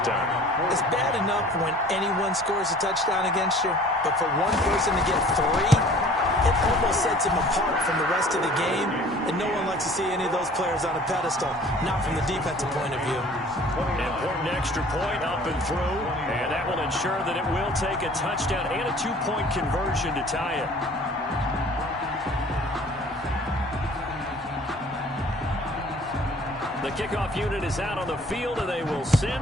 time. It's bad enough when anyone scores a touchdown against you, but for one person to get 3, it almost sets him apart from the rest of the game, and no one likes to see any of those players on a pedestal, not from the defensive point of view. Important extra point up and through, and that will ensure that it will take a touchdown and a 2-point conversion to tie it. The kickoff unit is out on the field, and they will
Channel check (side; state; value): both; normal; correlation 0.50